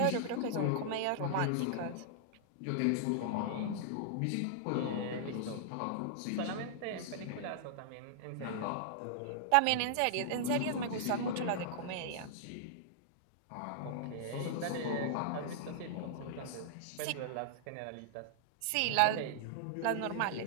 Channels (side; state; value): both; different; correlation -0.01